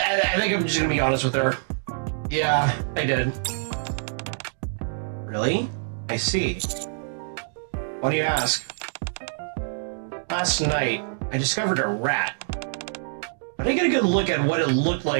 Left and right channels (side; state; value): left; silent; digital silence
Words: think I'm just gonna be honest with her. Yeah, I did. Really? I see. Why do you ask? Last night, I discovered a rat. But I didn't get a good look at what it looked